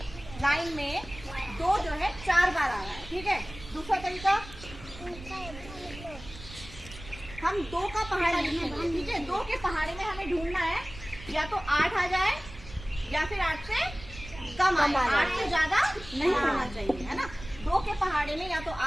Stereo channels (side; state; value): right; noise; rumble, 15 dB below the sound